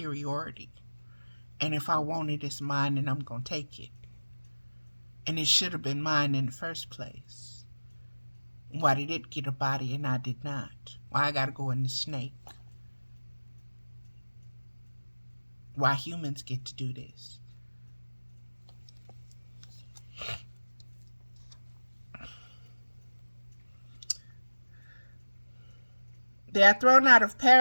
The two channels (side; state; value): both; inverted; correlation -1.00